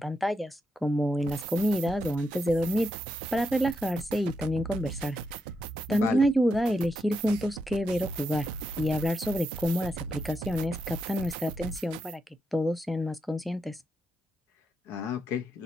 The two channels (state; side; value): normal; both; correlation 0.83